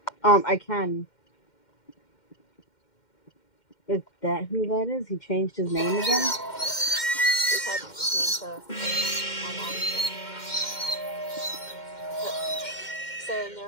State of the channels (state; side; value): late; right; 2.1 ms